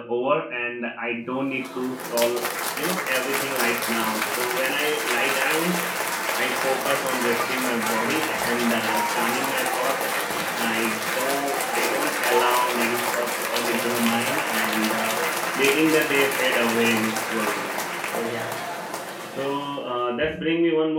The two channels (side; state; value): both; identical; correlation 1.00